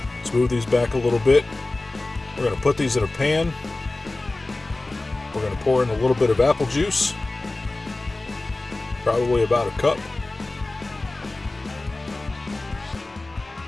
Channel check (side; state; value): right; quieter; 3.0 dB